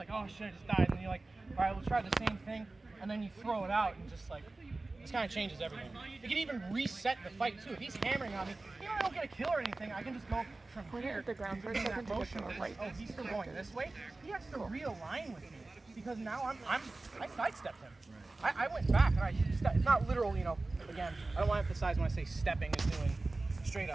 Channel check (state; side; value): quieter; left; 3.2 dB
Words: oh shit, I just died, and you're like, all right, we'll try the same thing, and then you throw it out and just like, this kind of changes everything. You can even reset the fight too. If he's hammering on me, I don't get a kill or anything, I can just go from here at the ground for a second to get to the right. Oh, he's still going this way? He has to realign with me, because now I sidestepped him. I went back and it's not literal, again, I don't want to emphasize when I say stepping is doing straight